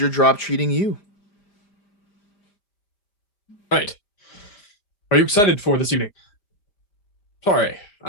job treating you? Right. Are you excited for this evening? Sorry,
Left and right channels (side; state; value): right; late; 5.0 ms